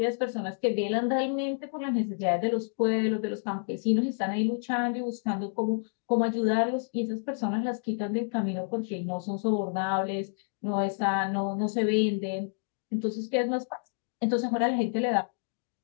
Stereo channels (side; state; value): right; silent; digital silence